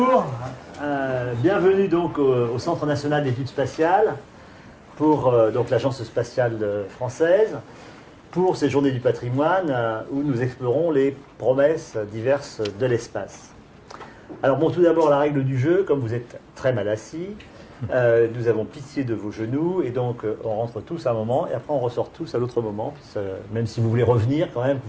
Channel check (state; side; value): identical; both; correlation 1.00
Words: bienvenue donc au Centre national d'études spatiales pour donc l'Agence spatiale française pour ces journées du patrimoine où nous explorons les promesses diverses de l'espace. Alors bon, tout d'abord la règle du jeu, comme vous êtes très mal assis, nous avons pitié de vos genoux et donc on rentre tous à un moment et après on ressort tous à l'autre moment, même si vous voulez revenir quand même, que